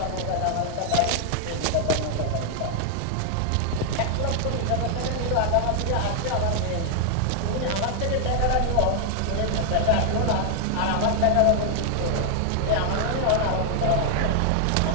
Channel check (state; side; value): different; both; correlation 0.00